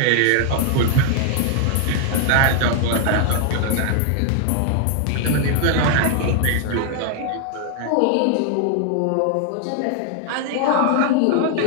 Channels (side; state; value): both; different; correlation 0.00